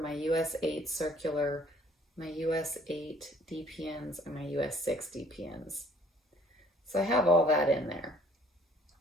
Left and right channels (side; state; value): both; normal; correlation 0.58